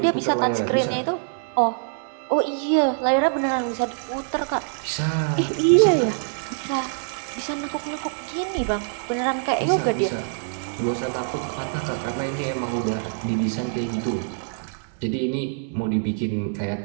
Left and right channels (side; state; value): left; silent; digital silence